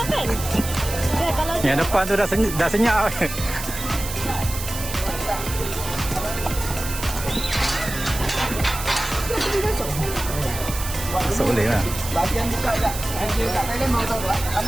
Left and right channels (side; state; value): right; noise; hiss, 8 dB below the sound